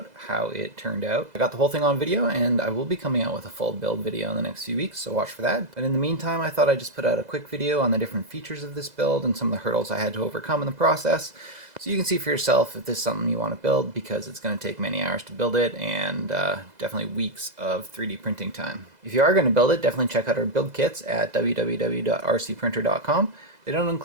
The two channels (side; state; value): left; late; 2.0 ms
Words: how it turned out. I got the whole thing on video, and I will be coming out with a full build video in the next few weeks, so watch for that. But in the meantime, I thought I'd just put out a quick video on the different features of this build and some of the hurdles I had to overcome in the process, so you can see for yourself if this is something you want to build, because it's going to take many hours to build it, and definitely weeks of 3D printing time. If you are going to build it, definitely check out our build kits at www.rcprinter.com. They don't